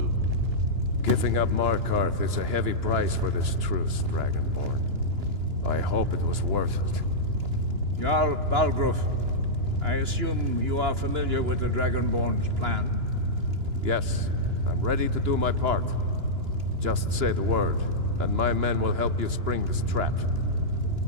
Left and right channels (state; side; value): late; left; 2.9 ms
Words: Giving up Markarth is a heavy price for this truce, Dragonborn. I hope it was worth it. Jarl Balgruuf, I assume you are familiar with the Dragonborn's plan? Yes, I'm ready to do my part. Just say the word, and my men will help you spring this trap.